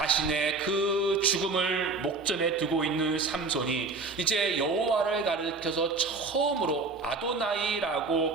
그 죽음을 목전에 두고 있는 삼손이 이제 여호와를 가리켜서 처음으로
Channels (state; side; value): quieter; left; 4.0 dB